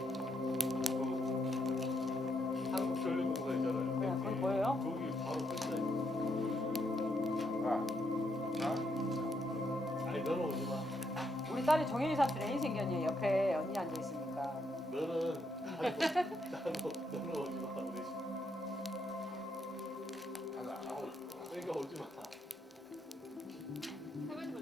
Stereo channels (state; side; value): normal; both; correlation 0.77